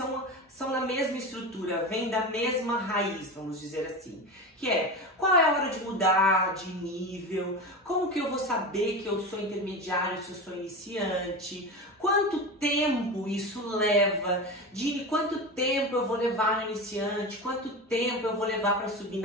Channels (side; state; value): both; normal; correlation 0.25